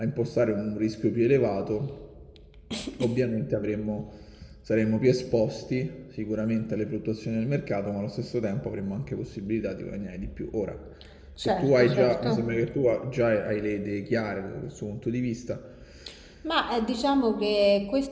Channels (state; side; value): identical; both; correlation 1.00